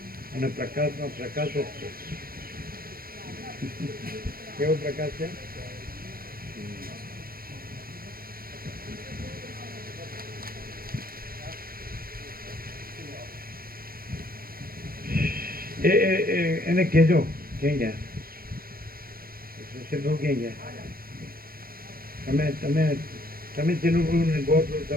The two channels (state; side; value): late; left; 0.43 ms